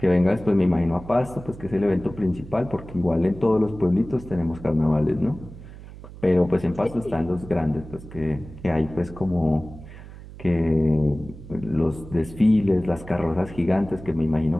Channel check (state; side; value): noise; right; hum, 16 dB below the sound